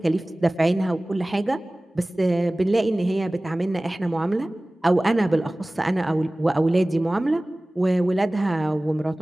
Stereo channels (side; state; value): both; normal; correlation 0.98